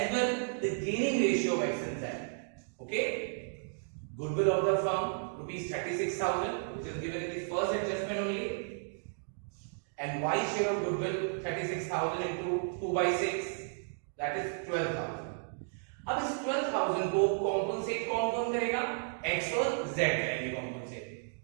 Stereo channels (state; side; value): silent; left; digital silence